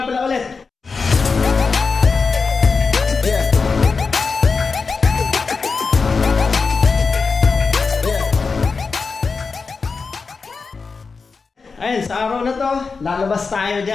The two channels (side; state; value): right; quieter; 4.7 dB